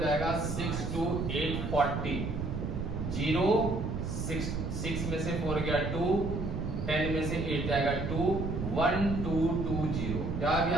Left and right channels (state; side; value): noise; right; rumble, 3 dB below the sound